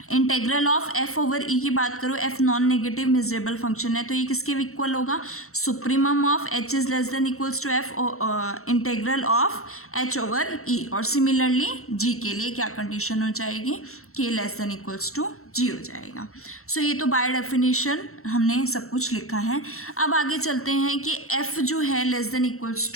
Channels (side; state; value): right; late; 0.63 ms